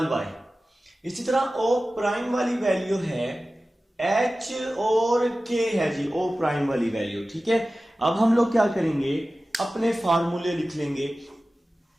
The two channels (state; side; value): normal; both; correlation 0.96